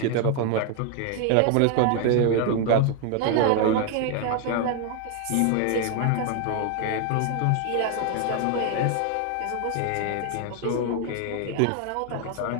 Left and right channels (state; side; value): different; both; correlation 0.01